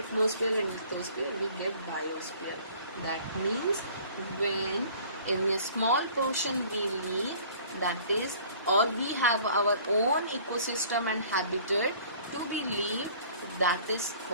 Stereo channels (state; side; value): inverted; both; correlation -0.51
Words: and lithosphere, we get biosphere. That means when in a small portion we live, that is, or we have our own ecosystem and habitat to be lived, that is